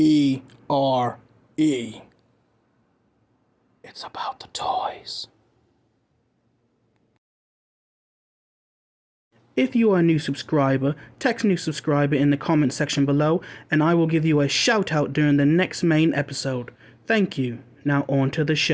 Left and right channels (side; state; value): both; identical; correlation 1.00